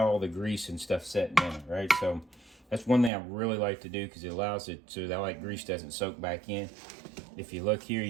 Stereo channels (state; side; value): drops out; left; at 3.1 s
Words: all the grease and stuff setting in it, right? So that's one thing I really like to do because it allows it so that like grease doesn't soak back in. If you look here,